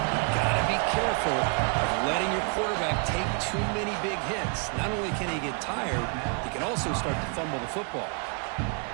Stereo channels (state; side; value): quieter; left; 36.5 dB